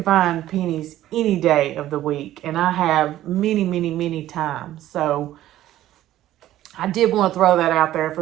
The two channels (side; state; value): left; quieter; 13.7 dB